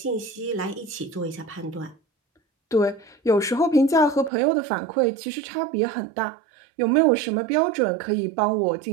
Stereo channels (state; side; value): drops out; left; at 4.3 s